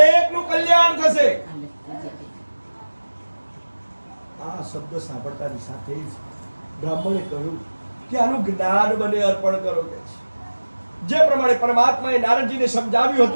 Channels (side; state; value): both; inverted; correlation -1.00